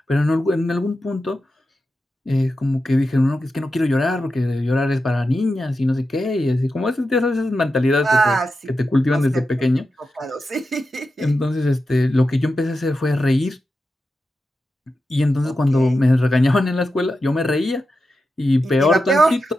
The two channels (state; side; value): normal; both; correlation 0.90